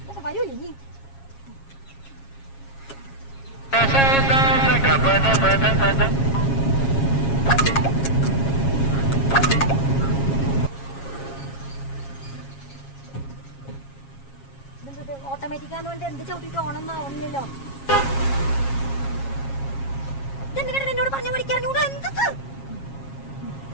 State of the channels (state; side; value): late; right; 7.4 ms